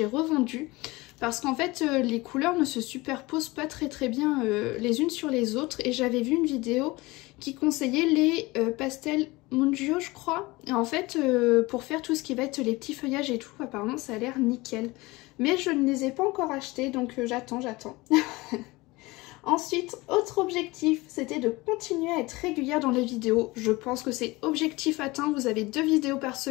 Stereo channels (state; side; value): quieter; right; 21.9 dB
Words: revendus. Parce qu'en fait, les couleurs ne se superposent pas très bien les unes sur les autres. Et j'avais vu une vidéo qui conseillait les pastels Mungio, je crois. Et en fait, pour faire tout ce qui va être les petits feuillages et tout, apparemment ça a l'air nickel. Mais je ne les ai pas encore achetés, donc j'attends. Ensuite, autre objectif, c'était de continuer à être régulière dans les vidéos. Je pense que c'est objectif atteint, vous avez 2 vidéos par